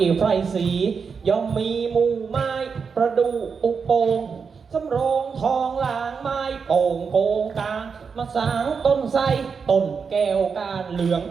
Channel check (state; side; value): quieter; left; 5.7 dB